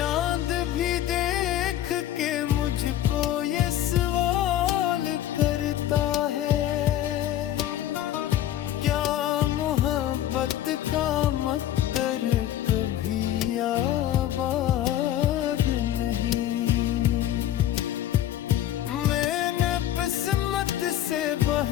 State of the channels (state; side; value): quieter; right; 12.3 dB